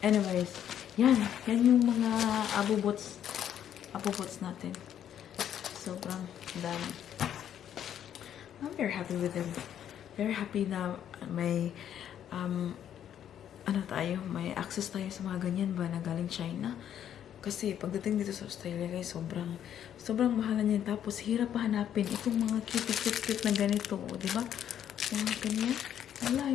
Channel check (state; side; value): quieter; right; 10.0 dB